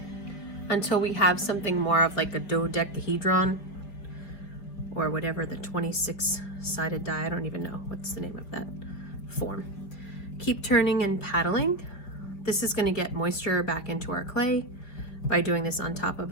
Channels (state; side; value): late; right; 5.1 ms